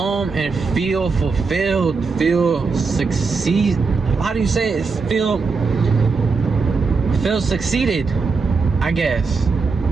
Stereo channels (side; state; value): left; quieter; 4.6 dB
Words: and feel fulfilled, feel succeed. How do you say it? Feel succeeded, I guess.